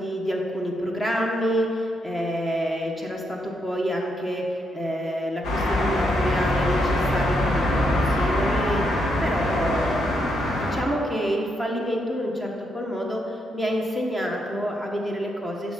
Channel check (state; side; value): normal; both; correlation 0.79